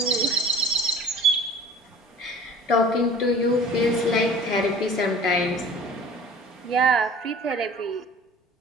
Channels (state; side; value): normal; both; correlation 0.45